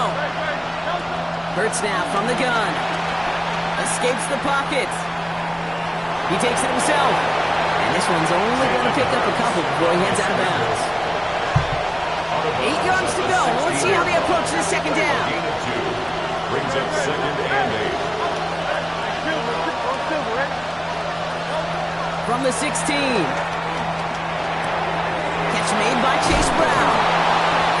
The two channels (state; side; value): identical; both; correlation 1.00